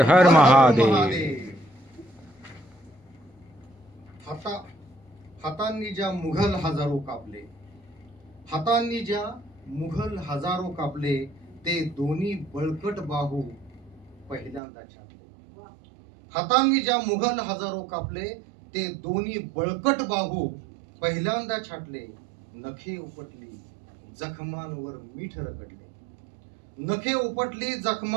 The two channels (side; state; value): left; drops out; at 14.6 s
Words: हर महादेव. हातांनी ज्या मुघल हजारो कापले, हातांनी ज्या मुघल हजारो कापले, ते दोन्ही बळकट बाहू पहिल्यांदा छाटले. हातांनी ज्या मुघल हजारो कापले, ते दोन्ही बळकट बाहू पहिल्यांदा छाटले. नखे उपटली जखमांवर मीठ रगडले, नखे उपटली